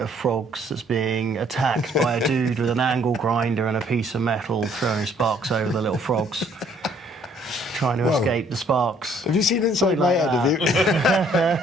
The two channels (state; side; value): normal; both; correlation 0.63